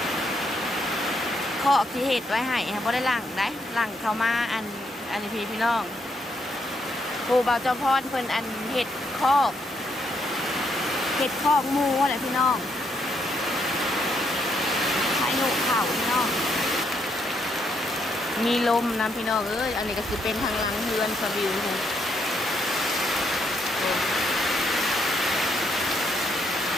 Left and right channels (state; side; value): normal; both; correlation 0.75